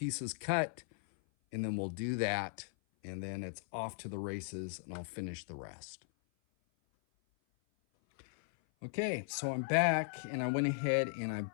cut, and then we'll do that, and then it's off to the races, and I'll finish the rest. Okay, so I'm back, and I went ahead and I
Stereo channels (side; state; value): right; silent; 53 dB below the other